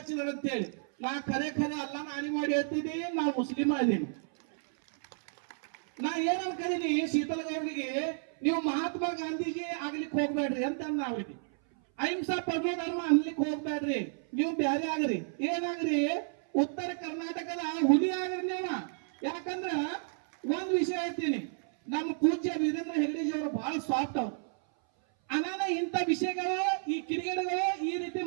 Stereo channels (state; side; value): silent; left; 57 dB below the other